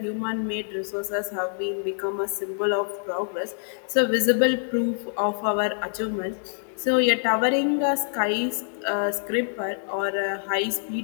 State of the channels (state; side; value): silent; right; digital silence